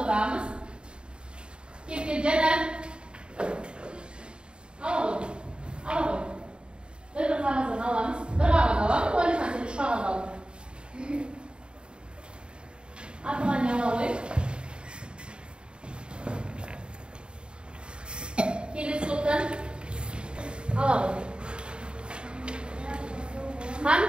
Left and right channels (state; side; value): late; left; 0.052 ms